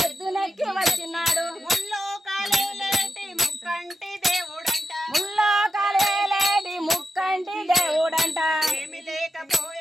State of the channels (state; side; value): normal; both; correlation 0.88